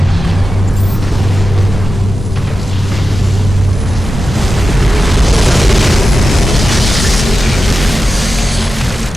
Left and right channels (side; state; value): both; normal; correlation 0.92